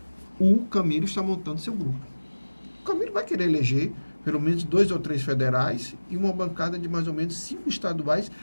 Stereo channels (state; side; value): inverted; both; correlation -1.00